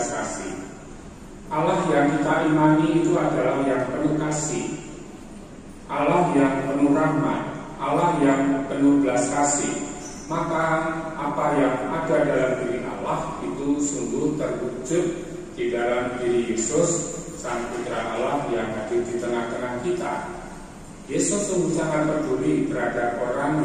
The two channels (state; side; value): identical; both; correlation 1.00